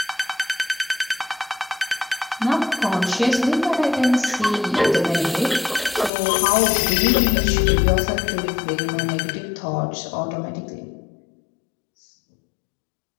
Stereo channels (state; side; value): drops out; right; at 6.1 s